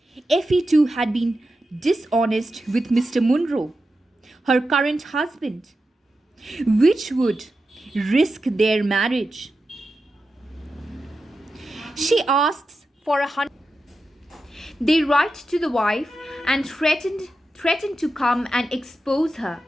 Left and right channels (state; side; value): normal; both; correlation 0.90